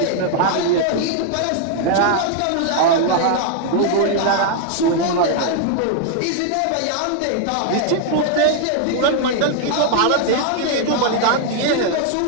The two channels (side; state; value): both; different; correlation 0.00